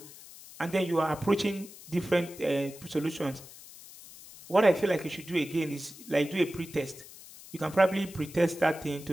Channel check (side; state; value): left; noise; hiss, 18 dB below the sound